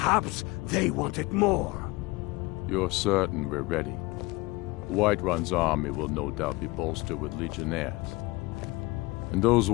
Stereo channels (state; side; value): quieter; right; 22.8 dB